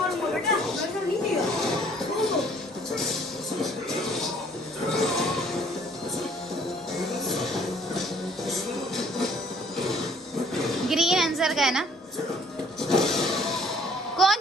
बेटा मैं तो नहीं दिया। ओहो ग्रीन आंसर का है ना? कौन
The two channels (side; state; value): both; normal; correlation 0.59